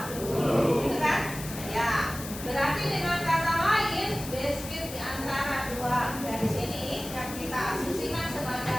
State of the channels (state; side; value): noise; left; hiss, 11 dB below the sound